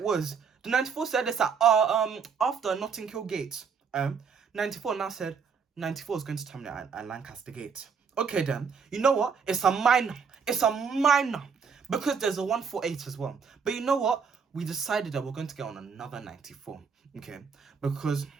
was? The 94 said this at after Notting Hill Gate. 94 now said 94 is going to terminate at Lancaster Gate. Okay then, you know what? It's a minor, because there's a 148 as well. But you know what? We decided that we're going to get on another 94, okay? Because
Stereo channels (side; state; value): left; quieter; 6.0 dB